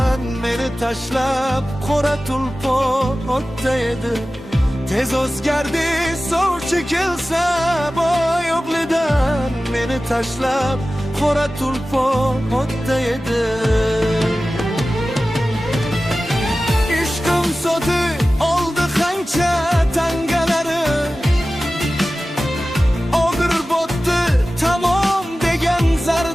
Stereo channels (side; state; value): both; normal; correlation 0.96